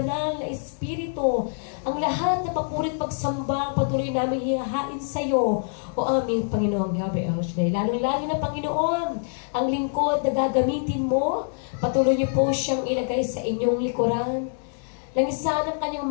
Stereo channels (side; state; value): right; silent; digital silence